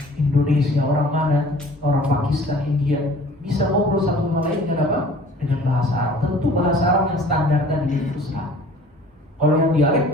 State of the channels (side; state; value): both; normal; correlation 0.49